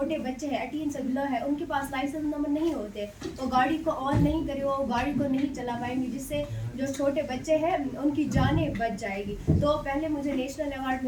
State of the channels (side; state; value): both; identical; correlation 1.00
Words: बच्चे हैं 18 से बिलो है, उनके पास लाइसेंस नंबर नहीं होते, वो गाड़ी को ऑन नहीं करे, वो गाड़ी को नहीं चला पाएंगे, जिससे जो छोटे बच्चे हैं उनकी जानें बच जाएगी। तो पहले मुझे नेशनल अवार्ड